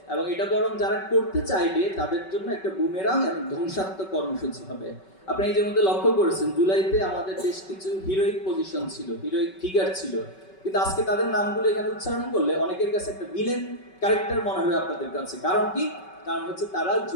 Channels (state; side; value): late; right; 5.3 ms